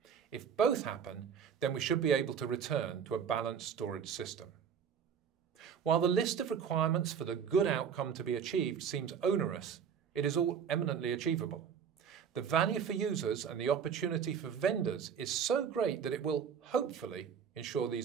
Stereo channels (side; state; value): left; quieter; 7.4 dB